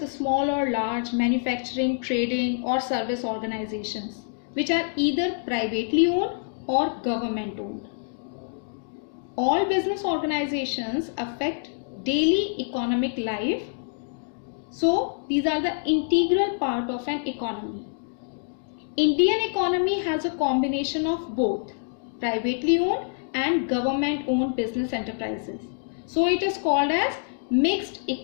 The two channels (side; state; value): right; silent; digital silence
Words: small or large manufacturing, trading or service organizations which are either privately owned or government owned. All business organizations affect daily economic life. So these are the integral part of an economy. Indian economy has a combination of both privately owned and government owned business enterprises. So it is called as mixed